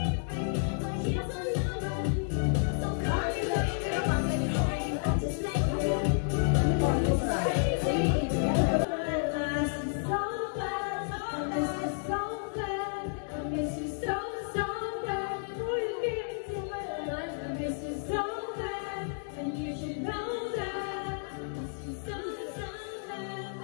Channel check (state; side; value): silent; right; digital silence